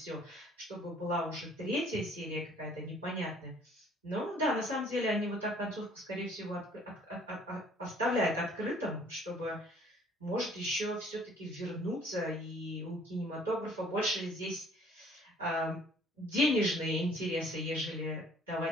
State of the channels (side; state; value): both; normal; correlation 0.56